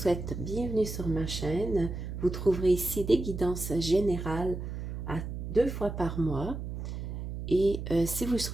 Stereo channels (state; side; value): noise; right; hum, 6 dB below the sound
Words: bienvenue sur ma chaîne. Vous trouverez ici des guidances générales à 2 fois par mois. Et si vous